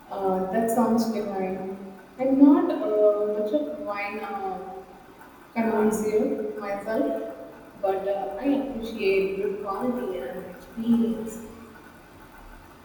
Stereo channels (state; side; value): identical; both; correlation 1.00